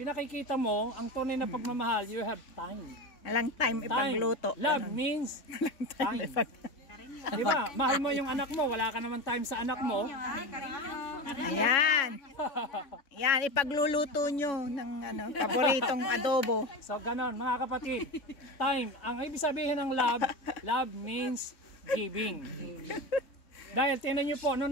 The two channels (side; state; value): right; late; 3.6 ms